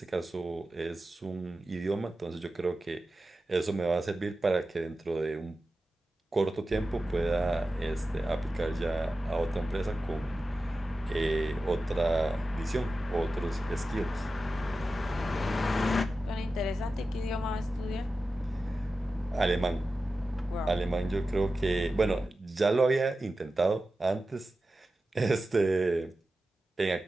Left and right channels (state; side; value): normal; both; correlation 0.93